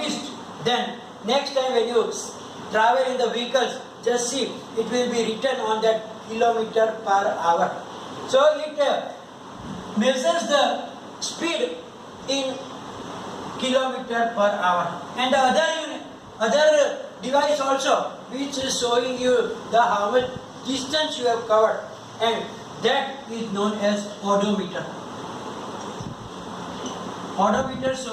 then next time when you travel in the vehicles, just see it will be written on that kilometer per hour. So it measures the speed in kilometer per hour. And the other device also which is showing you the how much distance you have covered, and that is known as odometer. Odometer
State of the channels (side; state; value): both; identical; correlation 1.00